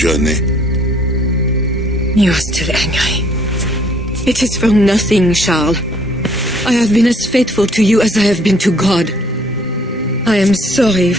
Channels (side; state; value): both; normal; correlation 0.61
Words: You are still angry. It is for nothing, Charles. I have been as faithful to you as I have been to God. I am sorry